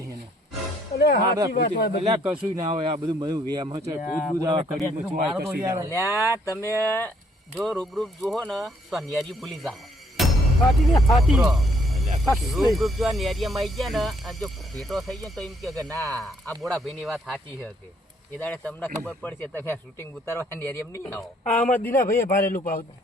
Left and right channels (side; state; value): both; normal; correlation 0.67